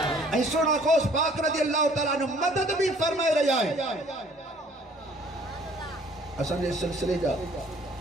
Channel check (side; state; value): both; normal; correlation 0.56